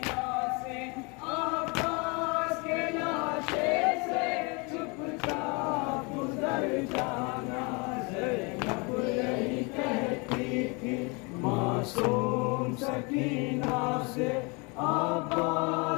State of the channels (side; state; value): right; quieter; 30.1 dB